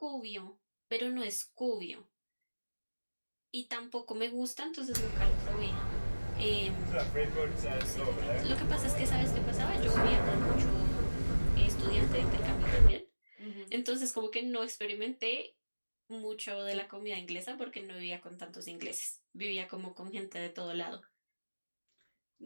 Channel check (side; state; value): both; inverted; correlation -1.00